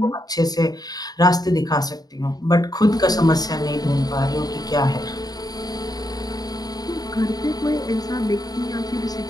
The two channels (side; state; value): right; late; 0.19 ms